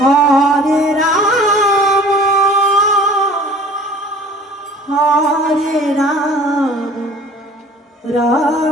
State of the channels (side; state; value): both; normal; correlation 0.47